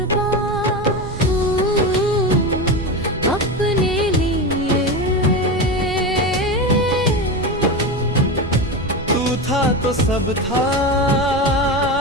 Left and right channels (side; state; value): right; noise; rumble, 10 dB below the sound